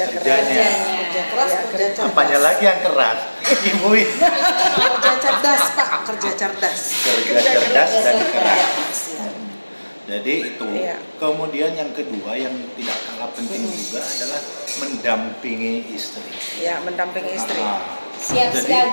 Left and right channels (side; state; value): both; inverted; correlation -1.00